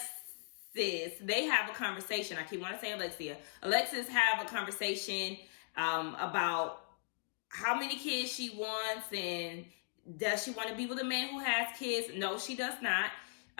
they have a conversation. I keep wanting to say Alexia. Alexis have a conversation about how many kids she wants and does she want to be with a man who has kids? No, she does not.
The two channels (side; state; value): right; silent; digital silence